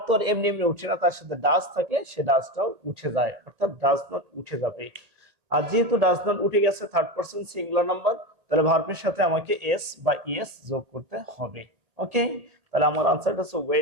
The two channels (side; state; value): left; late; 1.9 ms